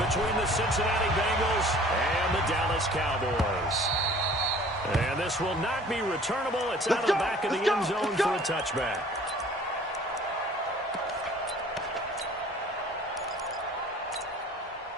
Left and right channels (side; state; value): both; normal; correlation 0.50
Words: between the Cincinnati Bengals and the Dallas Cowboys. And this will not be returnable. It's out of the back of the end zone for a touchback.